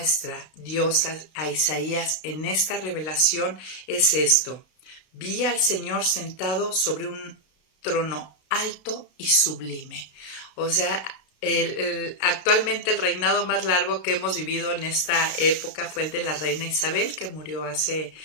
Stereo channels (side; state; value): right; late; 32 ms